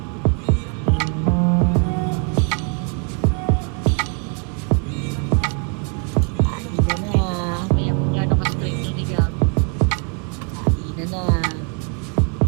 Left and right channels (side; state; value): left; quieter; 38.5 dB